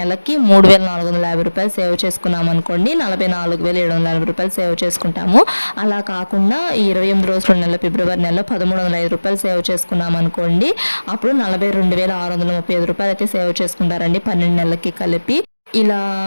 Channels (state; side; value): inverted; both; correlation -1.00